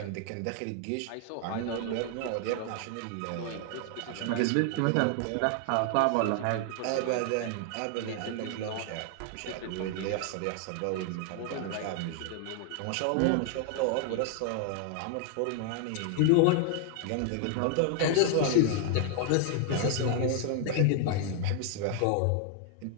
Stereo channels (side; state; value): both; different; correlation 0.00